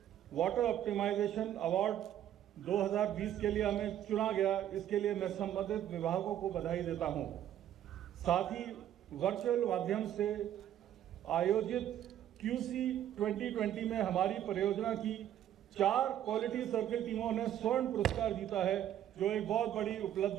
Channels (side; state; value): left; quieter; 11.2 dB